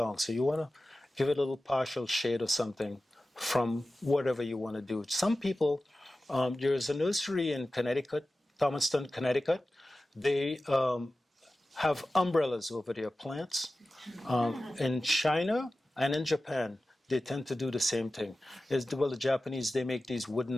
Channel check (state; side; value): normal; both; correlation 0.95